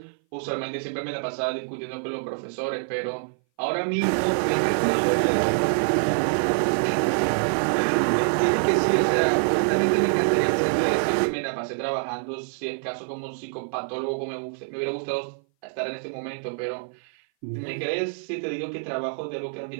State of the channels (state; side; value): silent; left; 58 dB below the other